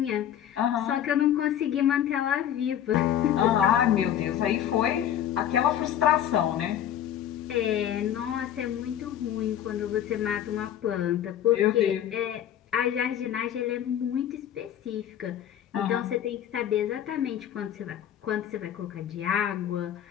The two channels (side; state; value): right; quieter; 10.5 dB